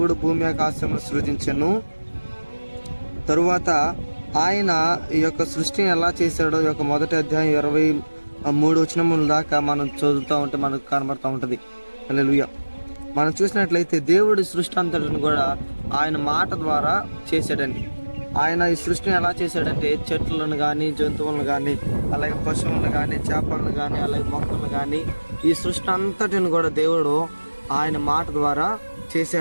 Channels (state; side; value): inverted; both; correlation -1.00